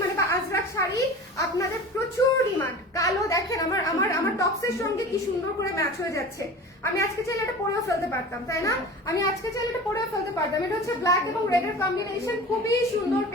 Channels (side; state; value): both; normal; correlation 0.36